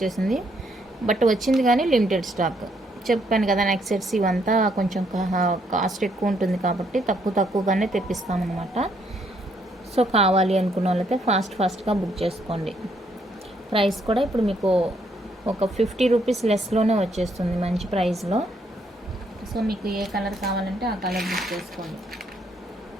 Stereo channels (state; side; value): normal; both; correlation 0.71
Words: బట్ వచ్చింది కానీ లిమిటెడ్ స్టాక్. చెప్పాను కదా నెక్స్ట్ సెట్స్ ఇవంతా కొంచెం కాస్ట్ ఎక్కువ ఉంటుంది కాబట్టి తక్కువగానే తెప్పిస్తామన్నమాట. సో కావాలి అనుకున్న వాళ్ళైతే ఫాస్ట్గా బుక్ చేసుకోండి. ప్రైస్ కూడా ఇప్పుడు మీకు ఒక 50 రూపీస్ లెస్లోనే వచ్చేస్తుంది, మంచి ప్రైస్లో. సో మీకు ఏ కలర్ కావాలంటే ఆ కలర్ బుక్ చేసుకోండి.